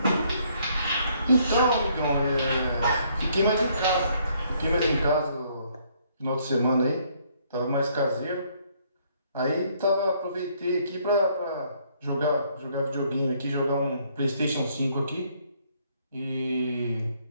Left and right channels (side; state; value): both; inverted; correlation -0.67